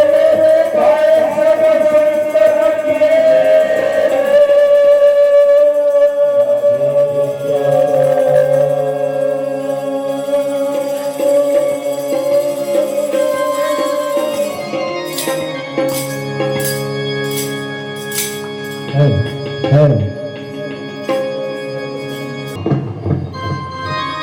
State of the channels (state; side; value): identical; both; correlation 1.00